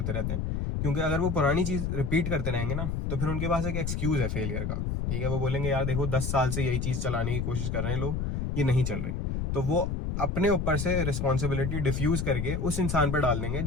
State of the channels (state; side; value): noise; left; rumble, 1 dB below the sound